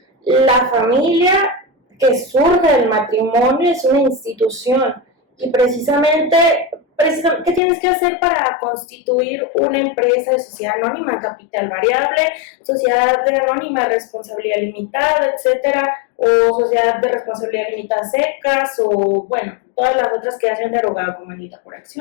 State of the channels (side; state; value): right; drops out; at 7.6 s